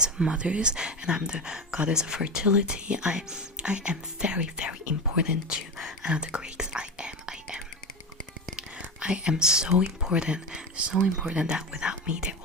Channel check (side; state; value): both; normal; correlation 0.22